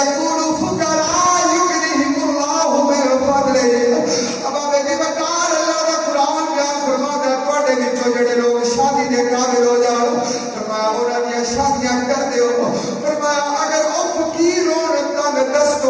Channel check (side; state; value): both; identical; correlation 1.00